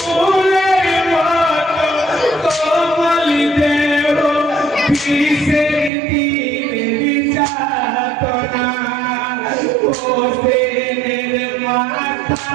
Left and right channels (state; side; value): drops out; left; at 5.9 s